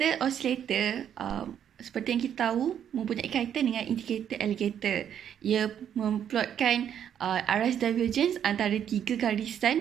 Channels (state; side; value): quieter; left; 9.3 dB